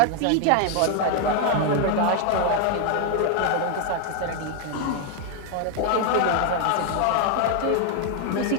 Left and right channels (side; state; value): both; different; correlation 0.00